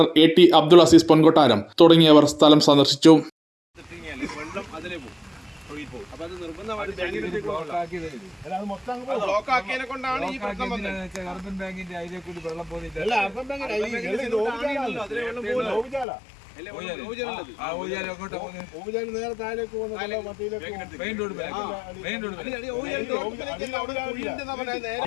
AT Abdul Azeez Ponkottaram തുടങ്ങിയവർ സ്ഥലം സന്ദർശിച്ചു.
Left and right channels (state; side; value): drops out; right; at 16.1 s